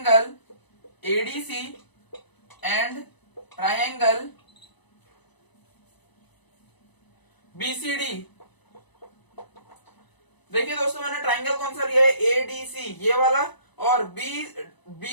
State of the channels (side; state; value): right; late; 1.0 ms